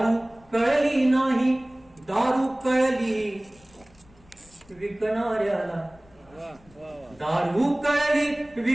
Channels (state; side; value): noise; left; rumble, 28 dB below the sound